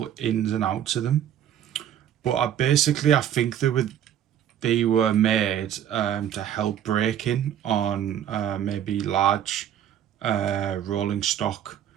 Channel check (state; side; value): quieter; left; 10.2 dB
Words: ins and outs of them, but I think they were made to help braking on maybe large rolling stock